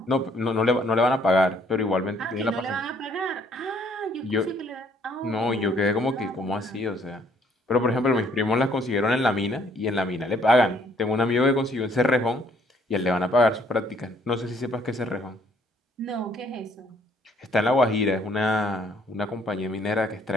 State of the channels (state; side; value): normal; both; correlation 0.64